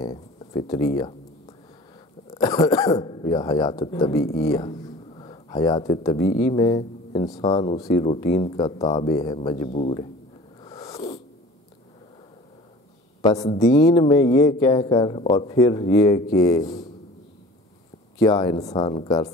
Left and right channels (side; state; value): both; normal; correlation 0.43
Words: فطریہ یا حیات طبیعیہ۔ حیات طبیعی میں انسان اسی روٹین کا تابع ہے، مجبور ہے۔ پس دین میں یہ کہہ کر اور پھر یہ کہ کیا انسان کر